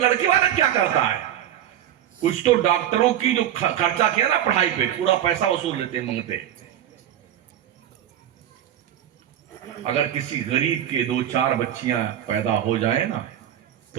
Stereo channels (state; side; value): quieter; left; 11.0 dB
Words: والا کیا کرتا ہے؟ کچھ تو ڈاکٹروں کی جو خرچہ کیا نا پڑھائی پہ پورا پیسہ وصول لیتے منگتے۔ اگر کسی غریب کے 2-4 بچیاں پیدا ہو جائیں نا